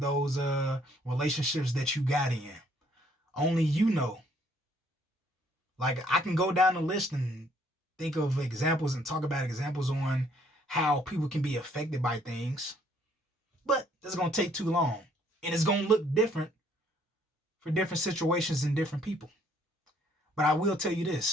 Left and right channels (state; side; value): normal; both; correlation 0.64